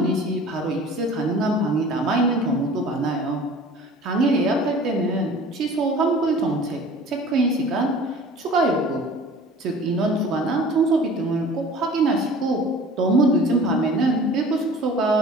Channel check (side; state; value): both; normal; correlation 0.45